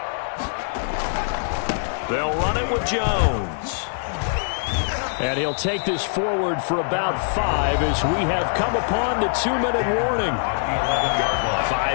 They'll run it with Jones. And he'll take this forward for about 5 as we have come upon the 2-minute warning.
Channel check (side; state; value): right; silent; digital silence